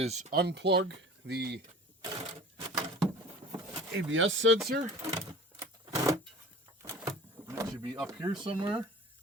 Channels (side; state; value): both; normal; correlation 0.41